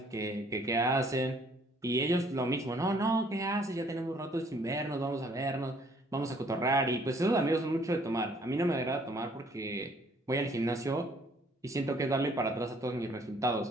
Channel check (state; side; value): normal; both; correlation 0.61